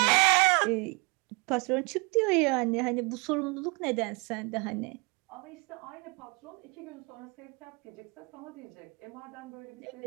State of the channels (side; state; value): left; quieter; 31.0 dB